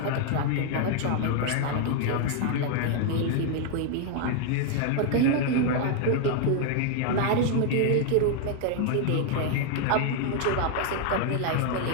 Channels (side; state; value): both; different; correlation 0.00